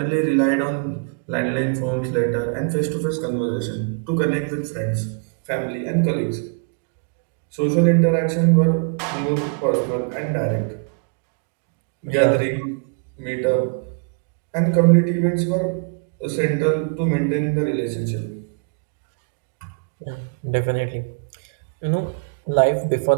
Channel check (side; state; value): left; quieter; 39.5 dB